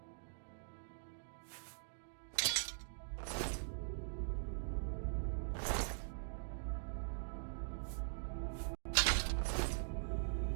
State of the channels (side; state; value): left; silent; digital silence